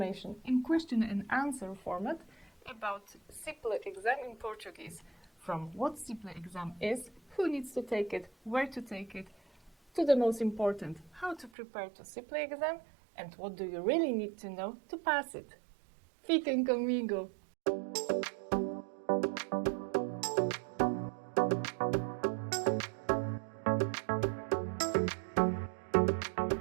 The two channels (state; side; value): drops out; left; at 11.5 s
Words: in question and answer format about CIPLE exam in Portuguese. From what CIPLE exam is, who needs to take it, where to take it, to the most important, how to prepare to CIPLE exam, and what do you really need to know to pass it. Fiquem comigo!